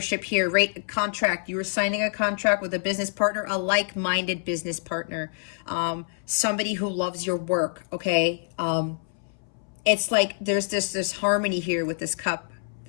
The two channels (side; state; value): right; silent; 61 dB below the other